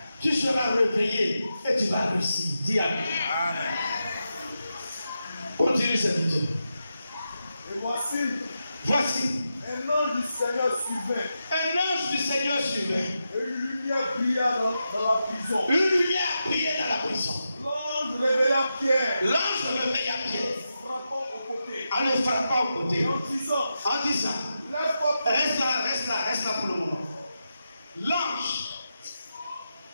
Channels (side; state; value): both; inverted; correlation -0.88